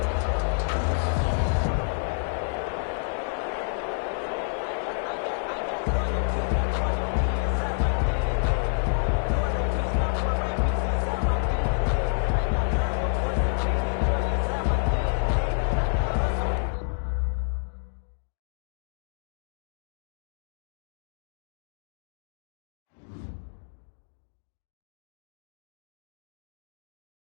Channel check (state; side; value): silent; right; digital silence